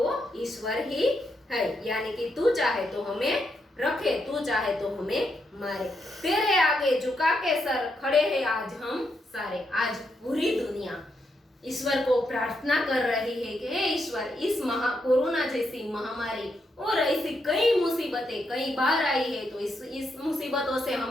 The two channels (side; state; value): both; normal; correlation 0.80